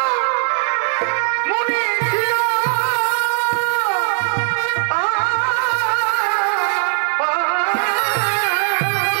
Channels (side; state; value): left; silent; digital silence